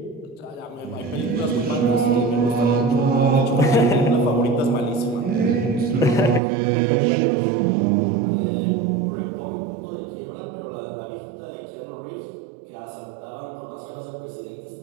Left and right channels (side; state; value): left; drops out; at 6.4 s